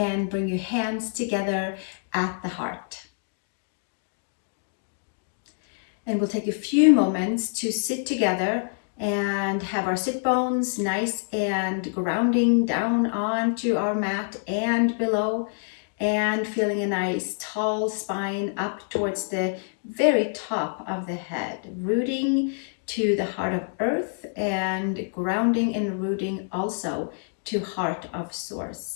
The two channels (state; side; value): silent; right; digital silence